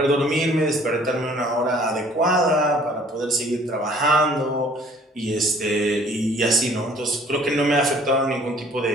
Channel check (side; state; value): both; normal; correlation 0.55